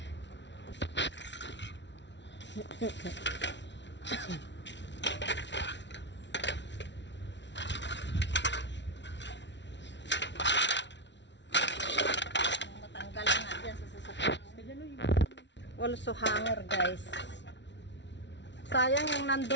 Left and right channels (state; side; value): late; right; 0.51 ms